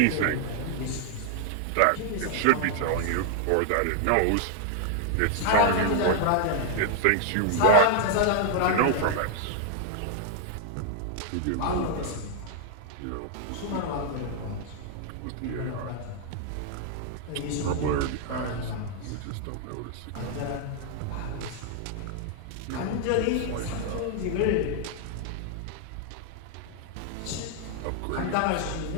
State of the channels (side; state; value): both; different; correlation 0.00